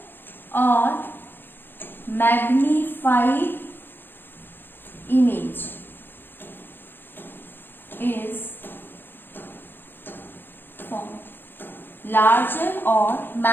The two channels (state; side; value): late; right; 0.099 ms